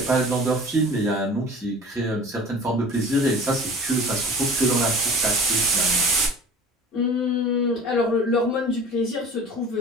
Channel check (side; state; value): both; normal; correlation 0.41